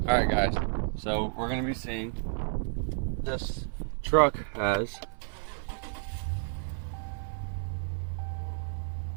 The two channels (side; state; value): left; silent; 57 dB below the other